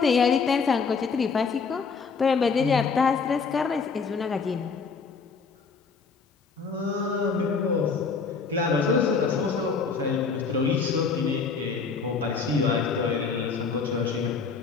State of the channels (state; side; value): quieter; right; 5.1 dB